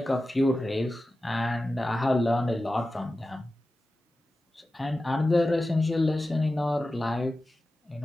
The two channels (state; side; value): normal; both; correlation 0.94